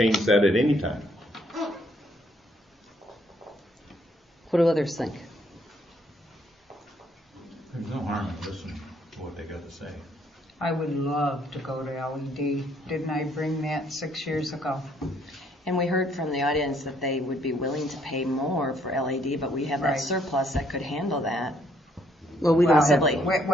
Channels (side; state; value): both; normal; correlation 0.68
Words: that at any time. What do others think? There's no harm in listening to what they got to say. I would love to go to LED. Didn't I bring that 6 years ago? And we heard from the audience that they would be willing to pay more for LED, but we have that Right. surplus that could handle that. Well, we don't have. Possibly.